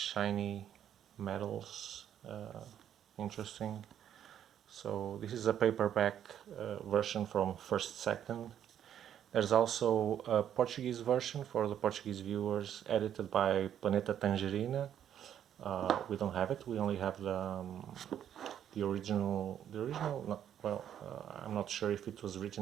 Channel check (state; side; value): quieter; left; 9.9 dB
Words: metals, interesting. So this is a paperback version from first second. There's also a Portuguese version for the Portuguese viewers, edited by Planeta Tangerina. We don't have it. We only have the original. I'm not sure if it was